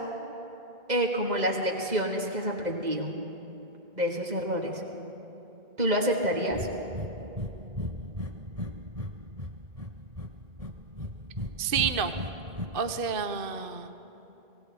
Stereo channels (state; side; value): late; left; 2.5 ms